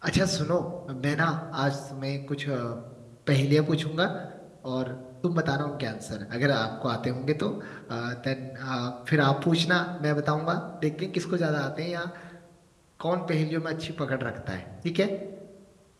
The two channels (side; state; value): both; identical; correlation 1.00